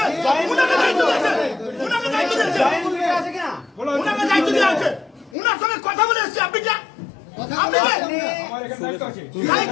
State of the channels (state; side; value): drops out; right; at 5.4 s